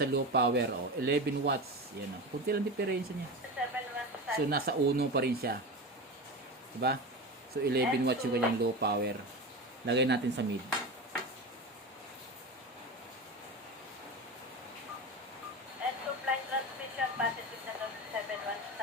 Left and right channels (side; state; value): both; normal; correlation 0.25